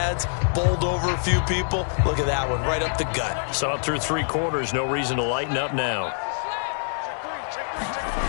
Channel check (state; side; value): silent; right; digital silence